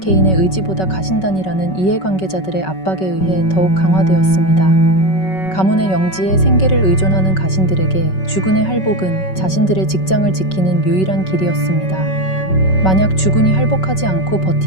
의지보다 가신단이라는 이해관계자들의 압박에 의해 더욱 강화되었습니다. 가문의 영지에 생계를 의존하는 가신들에게 주군의 할복은 자신들의 직장을 지키는 유일한 길이었습니다. 만약 주군이 할복하지 않고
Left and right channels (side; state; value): right; late; 5.3 ms